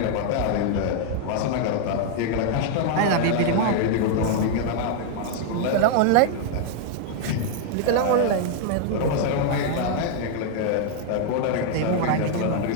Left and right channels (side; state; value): both; different; correlation 0.00